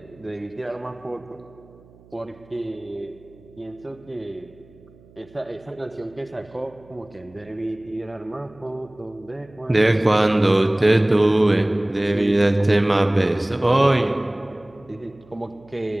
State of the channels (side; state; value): right; noise; hum, 26 dB below the sound